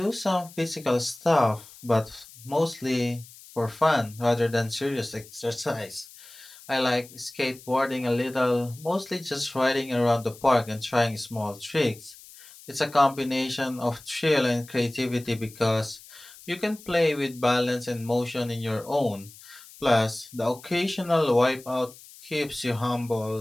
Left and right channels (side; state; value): left; noise; hiss, 20 dB below the sound